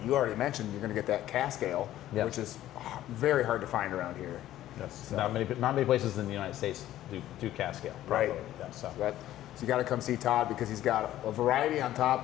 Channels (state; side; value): quieter; right; 13.5 dB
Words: you already mentioned. You're going to get that cask ale, which is very hard to find around here. Yes. So, not many places in the United States do cask ale. Right. Yeah, so you got to come see Todd because he's got a variety on